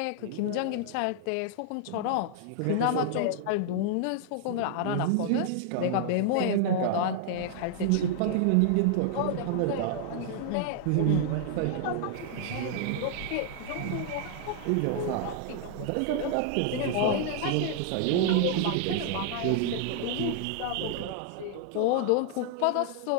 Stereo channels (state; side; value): different; both; correlation -0.01